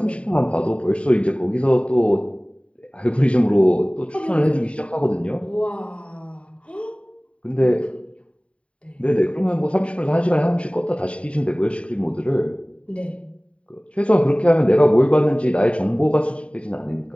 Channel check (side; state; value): right; late; 0.062 ms